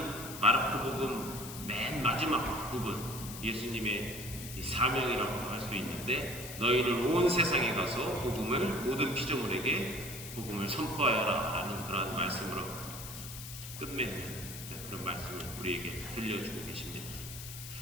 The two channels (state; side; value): noise; left; hiss, 10 dB below the sound